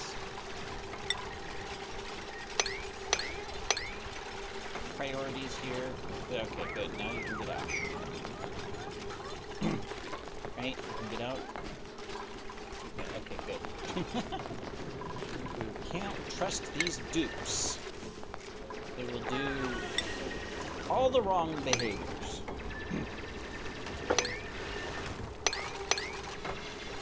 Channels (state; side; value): identical; both; correlation 1.00